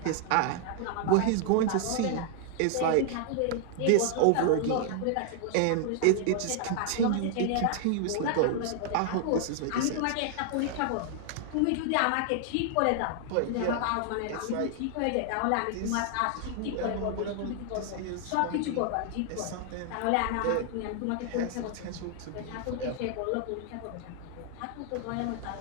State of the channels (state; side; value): different; both; correlation 0.00